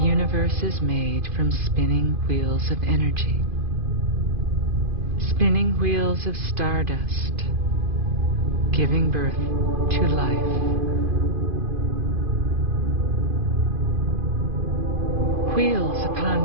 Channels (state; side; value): late; left; 2.5 ms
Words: is made from spinning wheels of energy. Spinning wheels of stardust, giving birth to life. Wheels